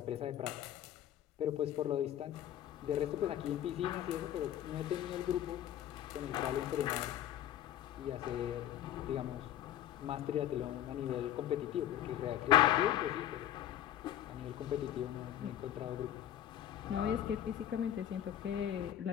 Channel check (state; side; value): quieter; right; 11.6 dB